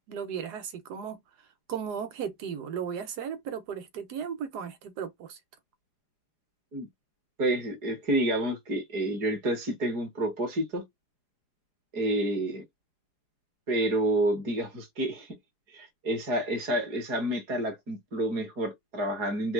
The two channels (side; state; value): left; late; 4.8 ms